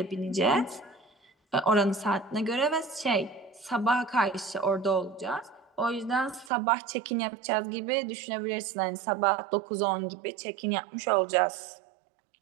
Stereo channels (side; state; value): left; drops out; at 6.5 s